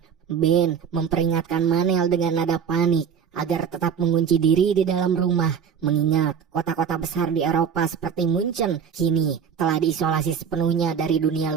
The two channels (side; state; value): left; quieter; 7.4 dB